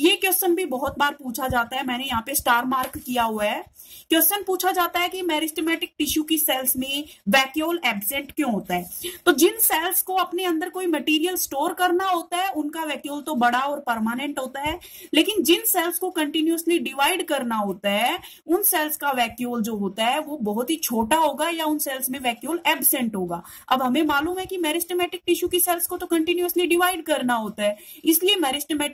क्वेश्चन भी बहुत बार पूछा जाता है, मैंने यहाँ पे स्टार मार्क किया हुआ है। क्वेश्चन पूछा जाता है कि मेरिस्टेमेटिक टिश्यू की सेल्स में वैक्यूल एब्सेंट क्यों होता है। तो जिन सेल्स को अपने अंदर कोई मटेरियल स्टोर करना होता है उनका वैक्यूल तो बड़ा और परमानेंट होता है, लेकिन जिन सेल्स को कंटिन्यूअसली डिवाइड करना होता है उन सेल्स का वैक्यूल जो होता है वो बहुत ही छोटा होगा या उन सेल्स में वैक्यूल एब्सेंट होगा। अब हमें मालूम है कि मेरिस्टेमेटिक टिश्यू की सेल्स को तो कंटिन्यूअसली डिवाइड करना होता है, इसलिए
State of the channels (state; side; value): identical; both; correlation 1.00